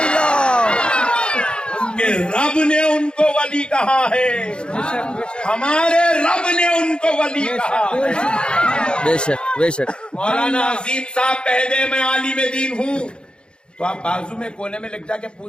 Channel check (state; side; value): late; right; 0.053 ms